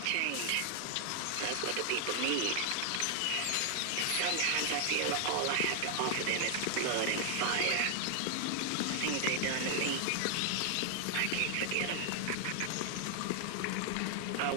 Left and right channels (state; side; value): different; both; correlation 0.00